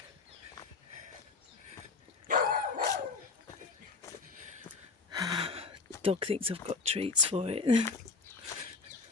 Dog thinks I've got treats for it.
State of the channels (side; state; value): right; quieter; 4.1 dB